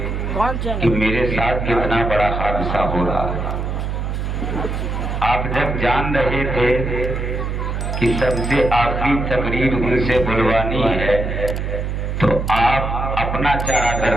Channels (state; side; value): noise; right; hum, 2 dB below the sound